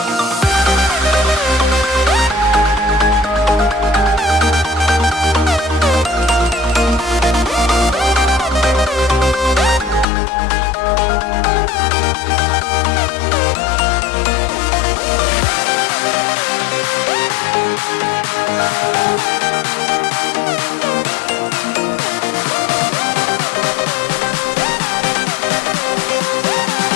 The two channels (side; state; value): right; drops out; at 10.1 s